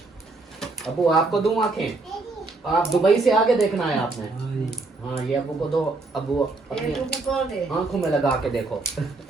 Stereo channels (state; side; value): quieter; left; 3.5 dB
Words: अबू आपको दूं आंखें? आप दुबई से आगे देखना है आपने। हाँ ये अबू को दो। अबू अपनी आंखों में लगा के देखो।